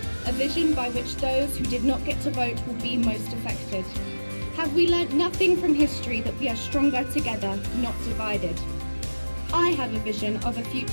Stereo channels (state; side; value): inverted; both; correlation -1.00